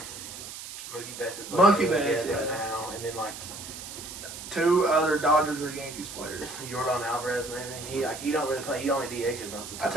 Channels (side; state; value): right; noise; hiss, 11 dB below the sound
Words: Mookie Betts is Mookie playing Betts, right yeah. now, and then like 2 other Dodgers or Yankees players. Jordan Alvarez maybe. He don't really play. He only DHs most of the time. I